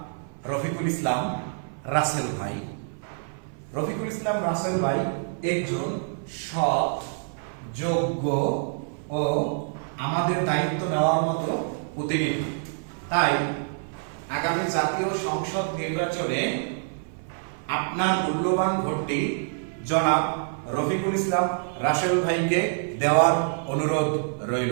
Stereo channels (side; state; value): left; silent; 56 dB below the other